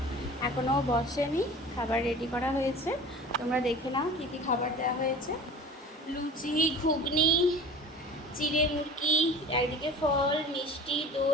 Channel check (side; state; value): both; normal; correlation 0.40